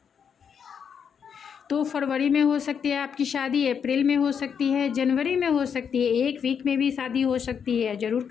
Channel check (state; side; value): quieter; right; 7.2 dB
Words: तो फरवरी में हो सकती है आपकी शादी, अप्रैल में हो सकती है, जनवरी में हो सकती है, 1 वीक में भी शादी हो सकती है, ज़रूर